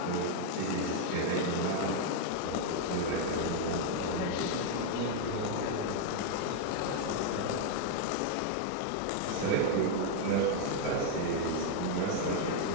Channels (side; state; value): both; different; correlation 0.00